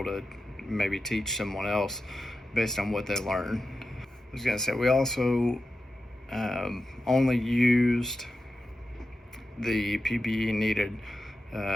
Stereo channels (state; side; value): normal; both; correlation 0.91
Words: to maybe teach someone else based on what they learned. I was gonna say, we also only used the PPE needed